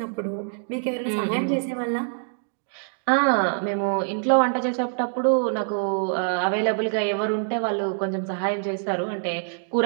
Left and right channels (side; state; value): left; silent; digital silence